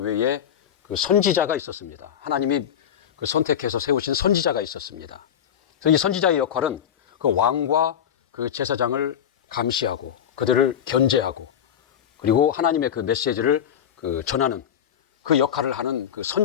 그 선지자가 있었습니다. 하나님이 그 선택해서 세우신 선지자가 있었습니다. 그래서 이 선지자의 역할은 그 왕과 그 제사장을 감시하고 그들을 견제하고 그리고 하나님의 그 메시지를 그 전하는 그 역할을 하는 그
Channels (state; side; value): quieter; right; 9.1 dB